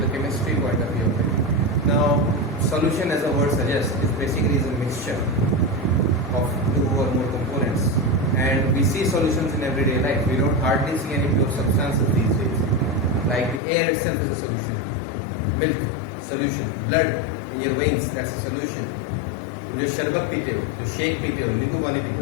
chemistry point of view. Now solution, as the word suggests, is basically a mixture of two or more components, and we see solutions in everyday life. We don't hardly see any pure substances these days. Like the air itself is a solution, milk, solution, blood in your veins, that's a solution. जो शरबत पीते हो, जो shake पीते हो, नींबू पानी पीते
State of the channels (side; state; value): right; drops out; at 13.6 s